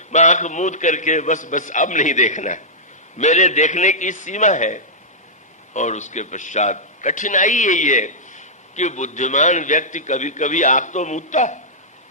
आंख मूद करके बस अब नहीं देखना, मेरे देखने की सीमा है। और उसके पश्चात कठिनाई यही है कि बुद्धिमान व्यक्ति कभी कभी आंख तो मूदता है,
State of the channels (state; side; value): normal; both; correlation -0.12